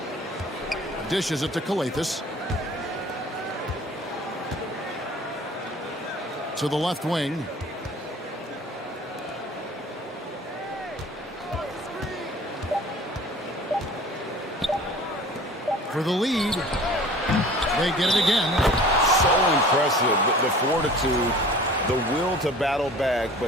Dishes it to Calathes. To the left wing. for the lead. They get it again. So impressive, the fortitude, the will to battle back,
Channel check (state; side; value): normal; both; correlation 0.45